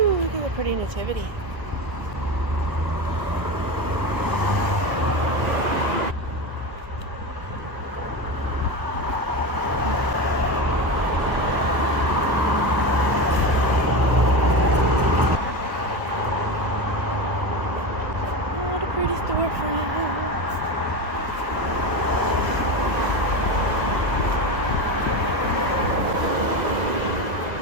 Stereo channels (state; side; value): late; left; 1.5 ms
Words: look at the pretty nativity. Pretty storefronts.